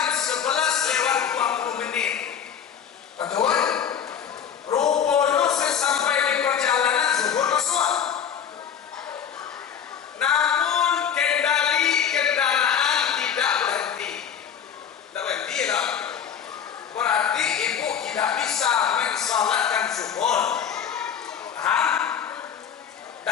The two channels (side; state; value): right; quieter; 8.1 dB